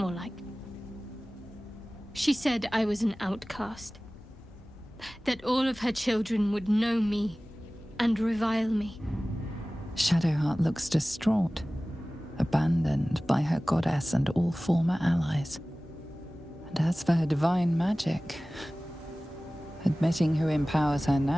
like. She said I was an outcast. That all of her children would know me and revile me. Shadowheart looks distraught, abandoned by her goddess and all former allies. And as for her divine magic, admitting who empowers her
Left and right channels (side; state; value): both; normal; correlation 0.98